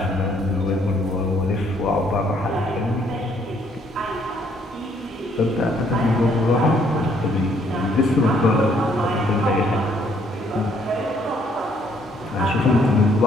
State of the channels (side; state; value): both; normal; correlation 0.67